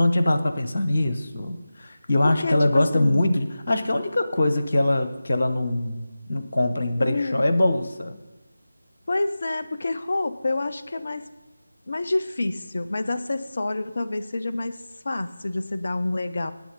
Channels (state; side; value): inverted; both; correlation -0.96